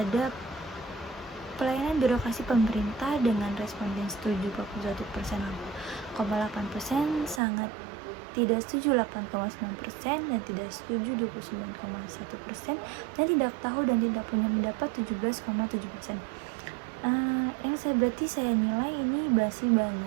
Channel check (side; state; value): left; drops out; at 7.4 s